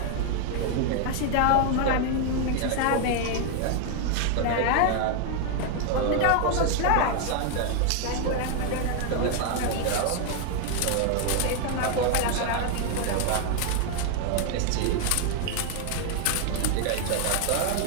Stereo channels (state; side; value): different; both; correlation 0.00